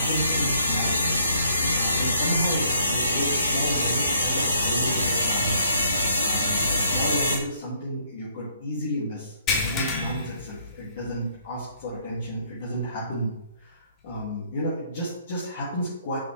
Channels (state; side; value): inverted; both; correlation -0.65